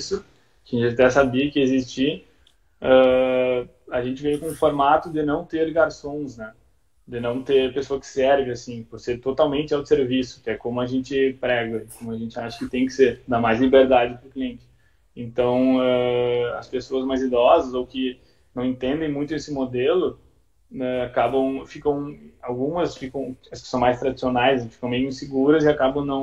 que a gente até sabia que existia. A gente veio com um formato de não ter garçons, né? De não ter pessoa que serve, assim, por ser totalmente autosserviço, que é como a gente prega, como a gente acha que tem que ser, dá mais liberdade para o cliente. Então, as pessoas mais idosas ou que não entendem muito esse modelo, né, algumas ficam, as que são mais tradicionais, ficam meio inseguras e acabam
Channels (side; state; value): both; identical; correlation 1.00